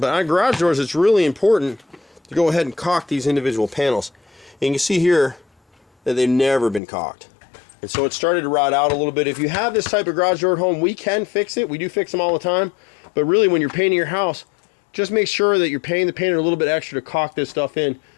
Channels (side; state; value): right; drops out; at 6.8 s